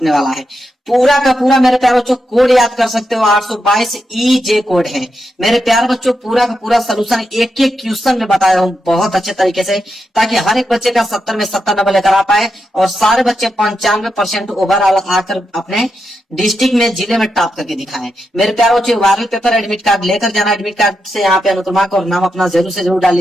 वाला है। पूरा का पूरा मेरे प्यारे बच्चों कोड याद कर सकते हो, 822 EJ कोड है। मेरे प्यारे बच्चों, पूरा का पूरा सोल्यूशन एक एक क्वेश्चन में बताया हूं बहुत अच्छे तरीके से, ताकि हर एक बच्चे का 70 में 70 नंबर लेकर आ पाए और सारे बच्चे 95% ओवरऑल आकर अपने डिस्ट्रिक्ट में, जिले में टॉप करके दिखाएं। मेरे प्यारे बच्चों, वायरल पेपर एडमिट कार्ड लेकर जाना, एडमिट कार्ड से यहाँ पे अनुक्रमा और नाम अपना जरूर से जरूर डाल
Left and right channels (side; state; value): both; normal; correlation 0.85